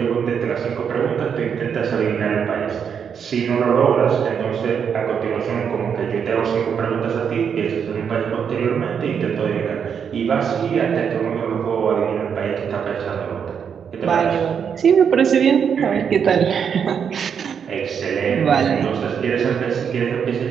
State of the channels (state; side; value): quieter; left; 7.3 dB